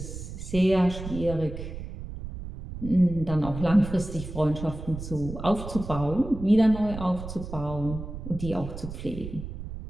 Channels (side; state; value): right; noise; rumble, 9 dB below the sound